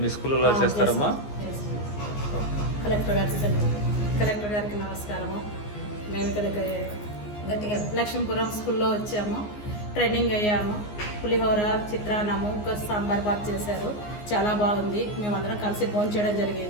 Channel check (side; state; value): right; late; 14 ms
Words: స్కూల్లో చేస్తారమ్మా? కలెక్టర్ గారికి నమస్కారము. మేము ఇక్కడ గట్టిగా లక్ష్మీపురం స్కూల్లో వచ్చాము. ట్రైనింగ్ అయ్యాము. పులిహోర, చిత్రాన్నము, ఇంకా సాంబార్ బాత్ చేశారు. చాలా బాగుంది. మేమందరం కలిసి భోజనం చేయడం